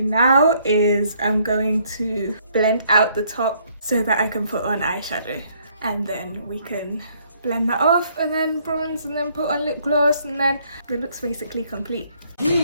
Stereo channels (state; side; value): inverted; both; correlation -0.66